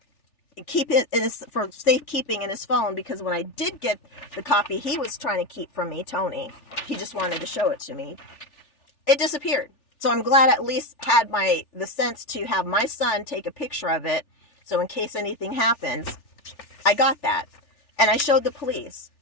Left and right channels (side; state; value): right; late; 3.4 ms